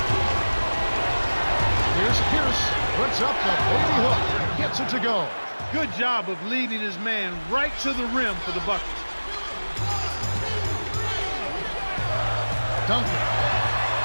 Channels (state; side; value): inverted; both; correlation -1.00